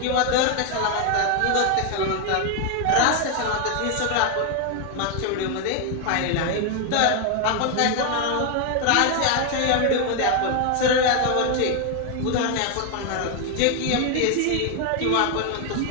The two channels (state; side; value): different; both; correlation 0.01